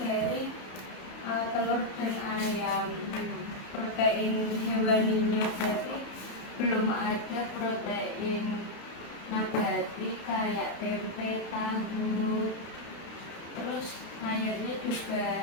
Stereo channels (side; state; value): right; late; 32 ms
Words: dari telur dan ayam. Protein hewaninya berarti belum ada protein nabati kayak tempe, tahu. Terus sayurnya